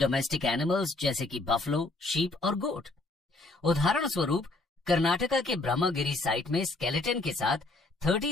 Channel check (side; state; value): right; quieter; 3.1 dB